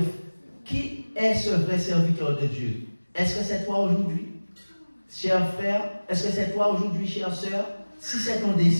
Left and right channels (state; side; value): inverted; both; correlation -1.00